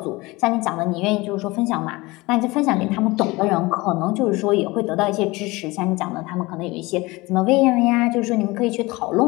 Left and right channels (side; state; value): right; quieter; 22.3 dB